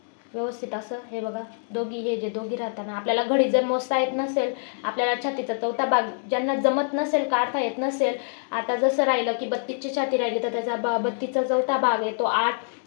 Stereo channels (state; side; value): silent; right; digital silence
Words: व्यवस्थित असं। हे बघा, हे दोघी राहताना आपल्याला घडी जर मोजता येत नसेल, आपल्याला छातीचा चौथा भाग ज्यांना जमत नसेल, काढता येत नसेल, आता जसं राहिलं की 32ची छाती राहिली तर त्याचा 32चा चौथा भाग आहे तो 8,